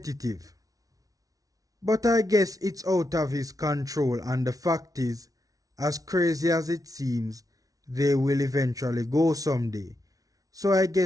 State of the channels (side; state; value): left; late; 0.18 ms